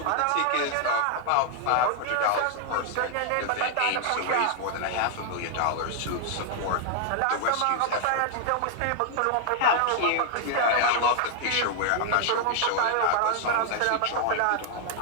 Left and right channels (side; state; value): both; different; correlation 0.00